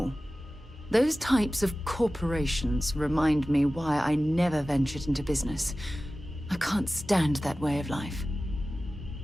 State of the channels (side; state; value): both; normal; correlation 0.96